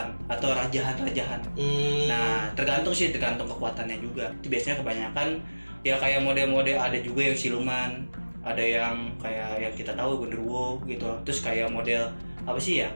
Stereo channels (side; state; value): both; inverted; correlation -1.00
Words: atau rajahan-rajahan. Nah, tergantung kekuatannya juga. Itu biasanya kebanyakan ya kayak model-model, ada juga yang siluman, ada yang kayak yang kita tahu genderuwo gitu. Terus kayak model apa sih ya?